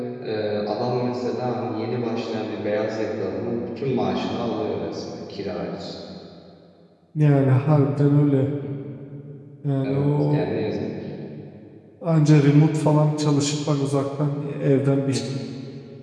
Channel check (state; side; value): identical; both; correlation 1.00